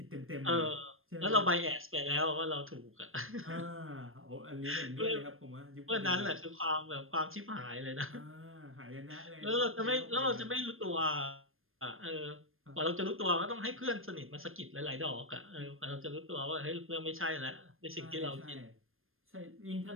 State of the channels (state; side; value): late; left; 0.60 ms